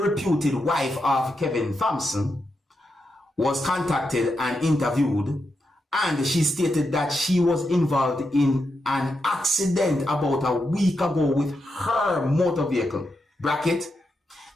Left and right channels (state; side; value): normal; both; correlation 0.85